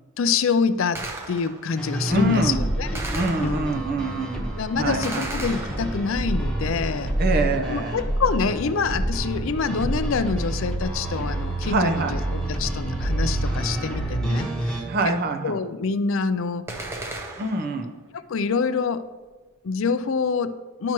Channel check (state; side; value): normal; both; correlation 0.42